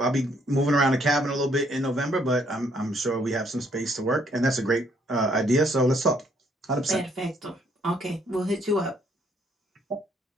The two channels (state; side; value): normal; both; correlation 0.67